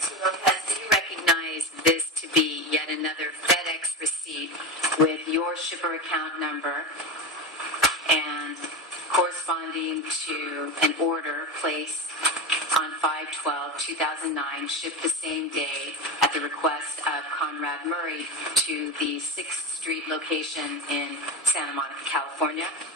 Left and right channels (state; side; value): normal; both; correlation 0.20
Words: Lopez, do you recognize this to be yet another FedEx receipt with your shipper account number and corresponding to an order placed on 5/12/2009, shipped the same day at the request of Conrad Murray to the 6th Street location in Santa Monica, California?